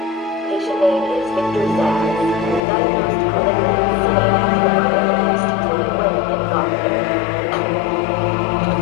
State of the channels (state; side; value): drops out; right; at 2.6 s